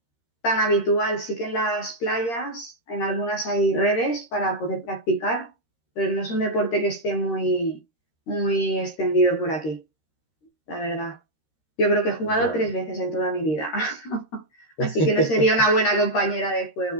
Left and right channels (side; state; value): right; late; 13 ms